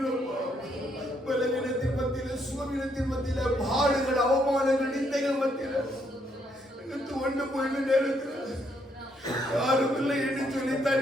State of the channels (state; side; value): normal; both; correlation 0.73